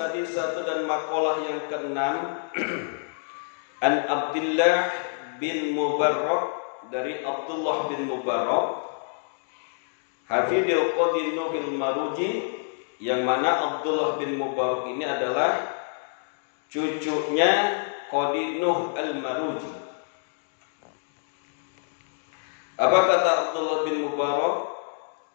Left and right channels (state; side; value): silent; right; digital silence